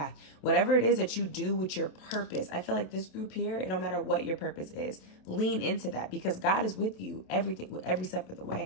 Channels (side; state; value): right; late; 27 ms